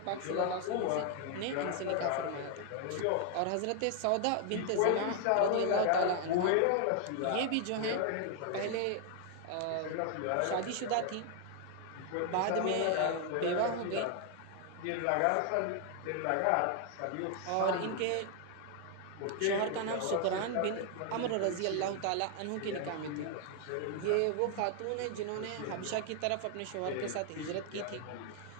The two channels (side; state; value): both; different; correlation 0.00